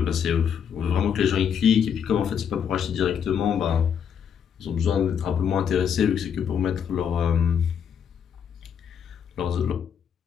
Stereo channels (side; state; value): right; quieter; 7.9 dB